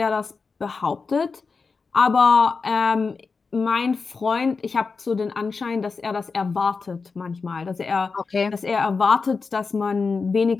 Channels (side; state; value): right; quieter; 4.7 dB